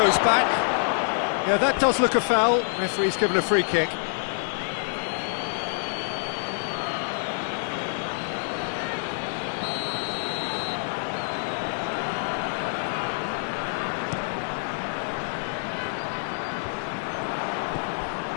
back. Yeah, that does look a foul. Referee's given a free kick.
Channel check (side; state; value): right; silent; digital silence